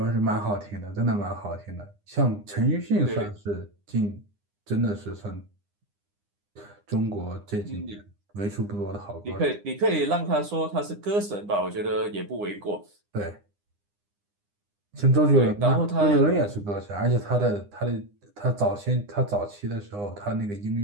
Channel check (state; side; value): late; left; 9.8 ms